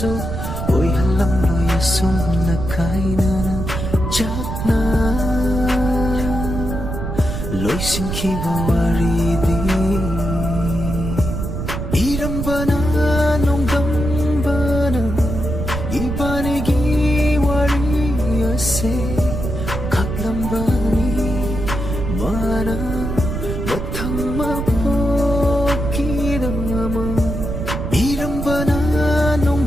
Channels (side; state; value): right; noise; rumble, 4 dB below the sound